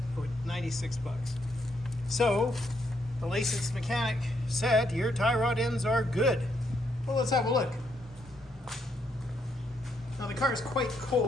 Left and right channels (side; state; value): both; normal; correlation 0.75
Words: bucks. So, the licensed mechanic said, your tie rod ends are good. Well, let's have a look. Now the car is quite